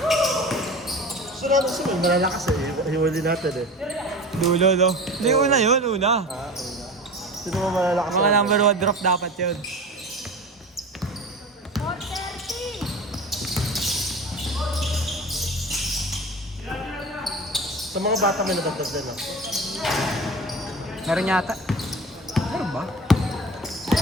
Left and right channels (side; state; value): both; normal; correlation 0.34